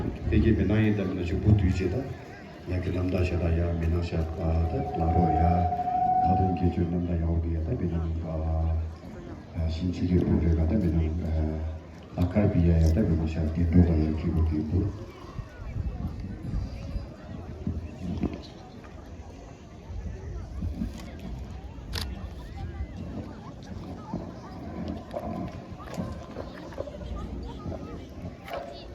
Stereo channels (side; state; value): both; identical; correlation 1.00